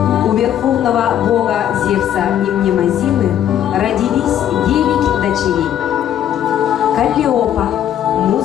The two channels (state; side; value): quieter; right; 10.5 dB